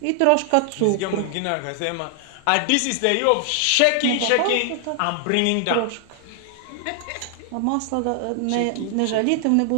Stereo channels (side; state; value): both; different; correlation 0.00